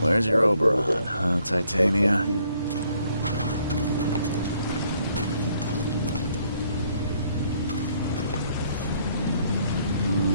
your Oberon, huh, Titania?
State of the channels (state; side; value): inverted; both; correlation -0.67